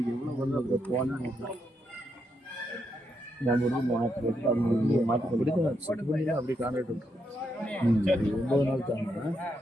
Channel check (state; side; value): normal; both; correlation 0.80